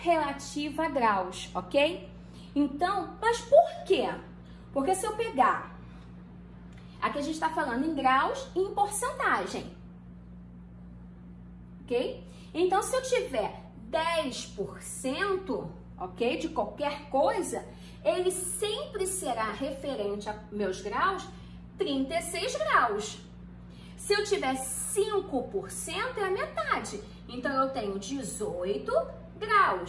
a graus, ok? Então, mas por quê? Porque se eu pegar, aqui a gente está falando em graus e em porcentagem, ok? Então, se eu tiver 10%, ok, de qualquer coisa, ele sempre será referente a meus graus, 36 graus. Se eu tiver 5%, é a metade. Então, eu tenho 18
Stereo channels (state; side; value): identical; both; correlation 1.00